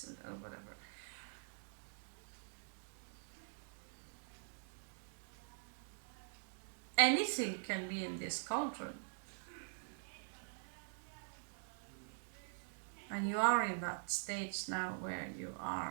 or whatever. Anything can be in this cauldron. And you are in that stage now where you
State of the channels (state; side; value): silent; left; digital silence